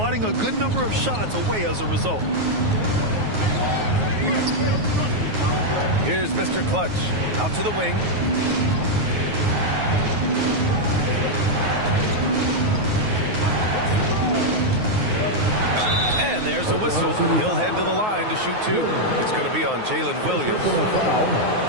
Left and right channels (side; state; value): left; late; 9.4 ms